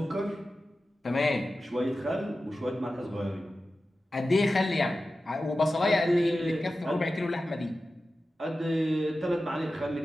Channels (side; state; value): both; normal; correlation 0.94